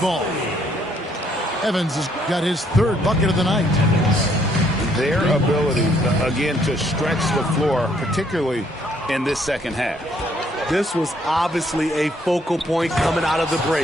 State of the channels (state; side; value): normal; both; correlation 0.67